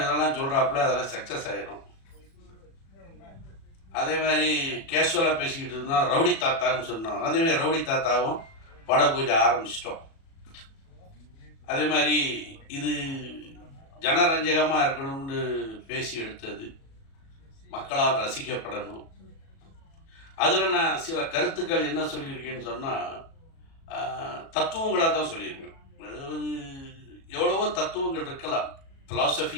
சொல்கிறாப்புல அதெல்லாம் சக்ஸஸ் ஆகிடும். அதே மாதிரி கேஷுவலாக பேசிக்கிட்டு இருந்தோம், ரவுடி தாத்தான்னு சொன்னோம். அதேமாதிரி ரவுடி தாத்தாவும் பட பூஜை ஆரம்பிச்சிட்டோம். அதே மாதிரி இது ஜனரஞ்சகமாக இருக்கணும்னு பேசி எடுத்தது, மக்களால் ரசிக்கப்படணும். அதில் நான் சில கருத்துக்கள் என்ன சொல்லியிருக்கேன்னு சொன்னால், தத்துவங்களாக தான் சொல்லியிருக்கேன். அதாவது எவ்வளவோ தத்துவங்கள் இருக்கலாம்,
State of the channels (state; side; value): late; right; 37 ms